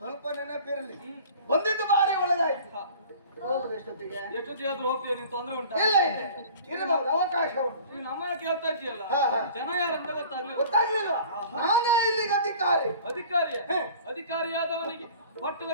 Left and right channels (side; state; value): both; inverted; correlation -0.45